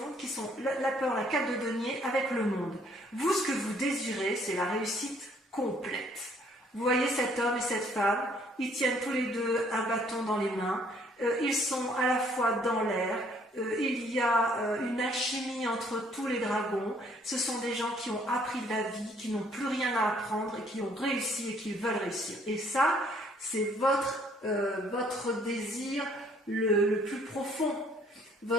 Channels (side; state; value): both; normal; correlation 0.63